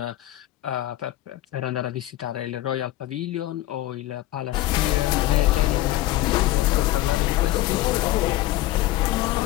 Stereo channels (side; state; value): right; quieter; 16.0 dB